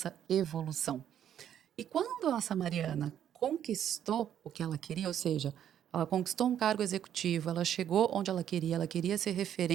evolução. E quando essa Mariana conquistou o que ela queria, ou seja, ela conquistou um cargo executivo, ela chegou onde ela queria ser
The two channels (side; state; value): left; quieter; 10.0 dB